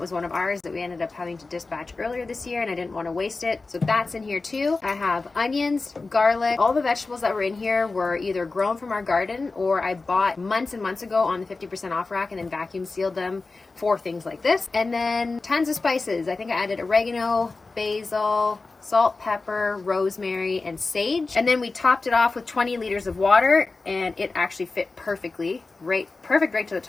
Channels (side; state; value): right; quieter; 3.7 dB